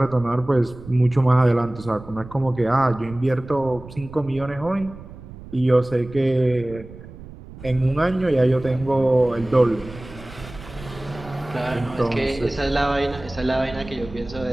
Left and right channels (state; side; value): noise; right; rumble, 16 dB below the sound